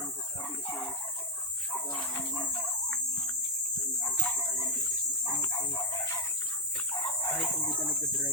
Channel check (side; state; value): both; normal; correlation 0.04